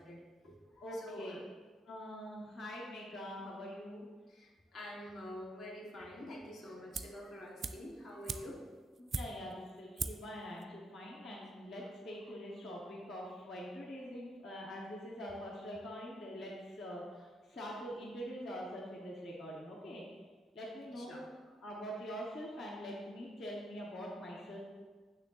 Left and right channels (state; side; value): normal; both; correlation 0.74